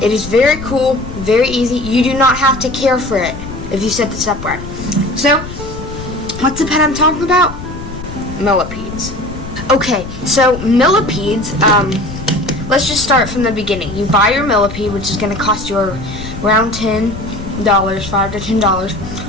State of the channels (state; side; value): noise; left; rumble, 11 dB below the sound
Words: it is very cool, very easy. You do not have to care for it if you set this up right. So, what's the pet I'm talking about? Millipedes. Okay, so millipedes, let's just start from the beginning. You buy your millipede, which is going to cost you around $10, $5 to